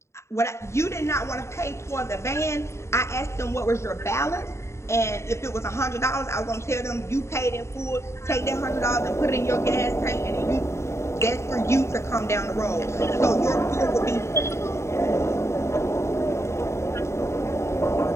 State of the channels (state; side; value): late; right; 0.13 ms